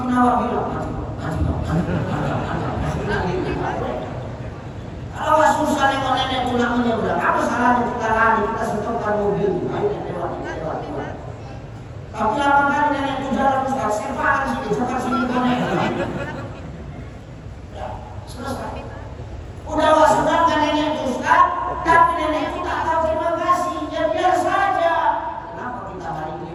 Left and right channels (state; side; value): identical; both; correlation 1.00